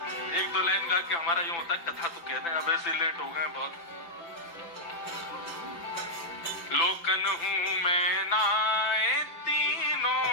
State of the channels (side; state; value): right; late; 5.9 ms